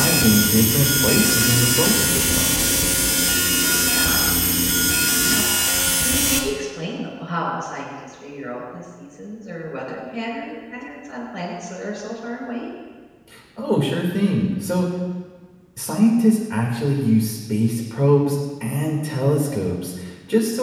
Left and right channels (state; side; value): identical; both; correlation 1.00